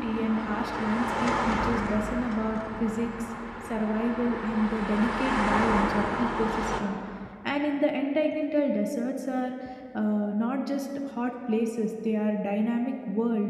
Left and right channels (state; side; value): identical; both; correlation 1.00